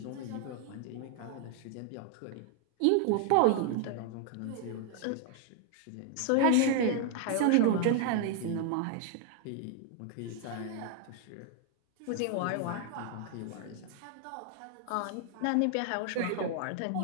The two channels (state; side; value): different; both; correlation 0.00